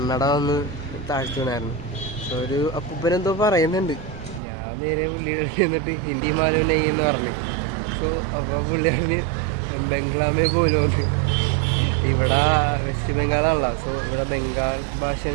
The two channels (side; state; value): left; drops out; at 4.4 s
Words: ഒന്ന് താഴ്ച വീണായിരുന്നു. സോ ഒരു അപ്പൂപ്പനെന്തോ പറയുന്നുണ്ട്. ഞാൻ നേരെ പുള്ളിയുടെ എന്നിട്ട് ഹിന്ദി മാലൂം നെയ്യെന്ന് പറഞ്ഞു. സോ അപ്പോൾ പുള്ളി പറഞ്ഞ് ബംഗ്ലാമേ പോലും ഒന്ന് ഇവിടെ വെസ്റ്റ് ബംഗാളാണല്ലോ. സോ ഇവിടെ ബംഗാൾ